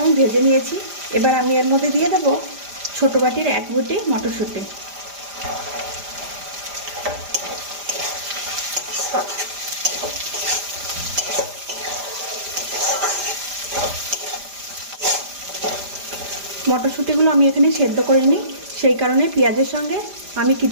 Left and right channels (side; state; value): left; late; 5.0 ms